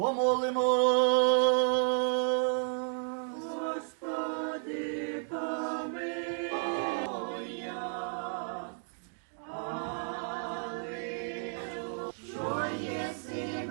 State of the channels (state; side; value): silent; left; 56 dB below the other